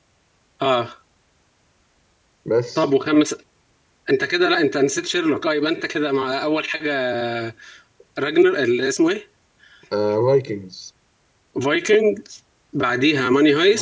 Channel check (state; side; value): identical; both; correlation 1.00